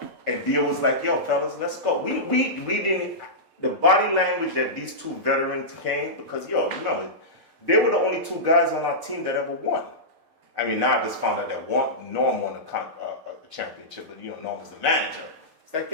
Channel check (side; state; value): left; late; 6.6 ms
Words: And Dio was like, yo, fellas, let's go. We didn't, the body language that these two veterans came, because, yo, remember, they were the only 2 guys on our team that ever won. I mean, now I just found out that Norm won a championship, but, you know, Norm was the manager. It's like,